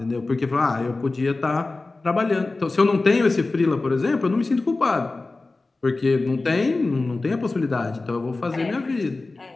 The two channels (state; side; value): quieter; right; 3.4 dB